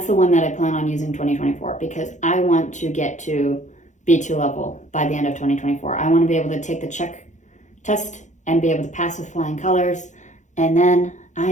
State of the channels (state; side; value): late; right; 0.35 ms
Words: the one that I plan on using 2024, because I want to get to B2 level by the end of 2024. I want to be able to take the Czech test and be able to pass with flying colors, and then